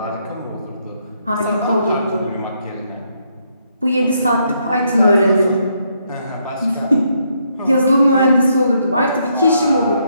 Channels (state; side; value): inverted; both; correlation -0.75